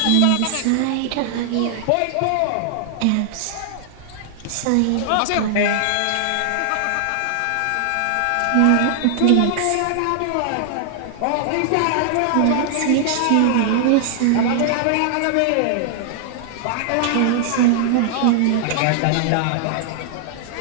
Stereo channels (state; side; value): different; both; correlation 0.00